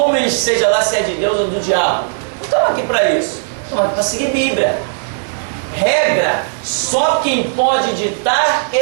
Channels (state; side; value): silent; left; digital silence